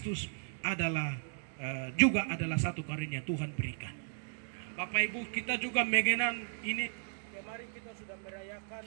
adalah juga adalah satu karunia Tuhan berikan. Bapak Ibu, kita juga mengenang ini. Kemarin kita sudah merayakan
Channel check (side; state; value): left; silent; digital silence